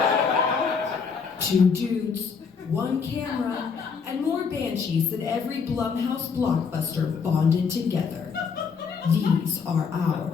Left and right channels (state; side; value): quieter; right; 5.8 dB